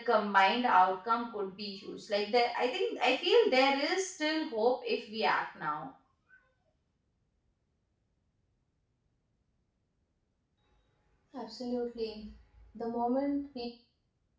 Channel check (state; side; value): identical; both; correlation 1.00